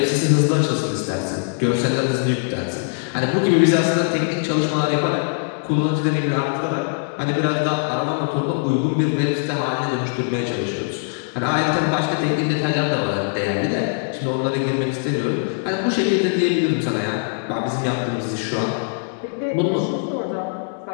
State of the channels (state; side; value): silent; right; 65 dB below the other